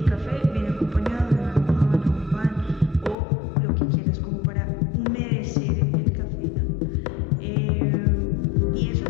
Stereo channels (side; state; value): right; drops out; at 3.2 s